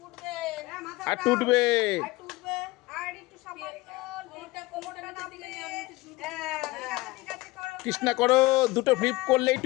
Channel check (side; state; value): right; quieter; 20.9 dB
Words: আর উঠবে। কৃষ্ণা করো, দুটো ফ্লিপ করলেই